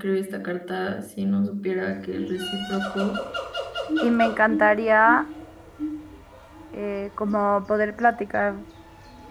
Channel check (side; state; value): both; identical; correlation 1.00